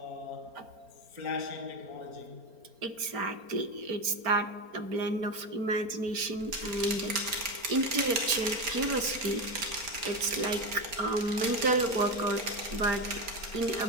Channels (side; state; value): left; late; 4.4 ms